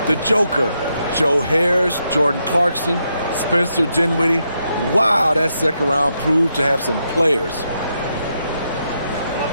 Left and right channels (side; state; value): both; inverted; correlation -0.81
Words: the Joker, Joe Harris, Jordan Clarkson, Spencer Dinwiddie. Wow, that second round proved to have some players.